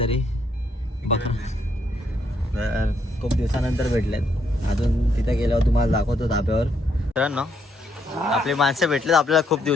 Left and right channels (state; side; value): normal; both; correlation 0.74